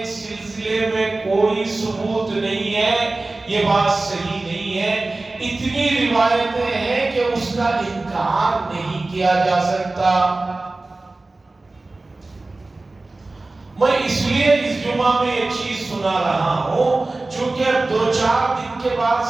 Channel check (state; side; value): quieter; left; 3.2 dB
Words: اس سلسلے میں کوئی ثبوت نہیں ہے، یہ بات صحیح نہیں ہے۔ اتنی روایتیں ہیں کہ اس اس کا انکار نہیں کیا جا سکتا۔ میں اس لیے اس جمعہ میں یہ چیز سنا رہا ہوں چونکہ اب 2-4 دن کے بعد